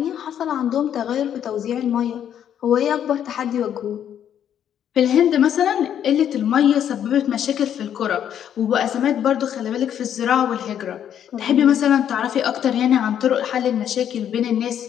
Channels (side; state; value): right; quieter; 9.6 dB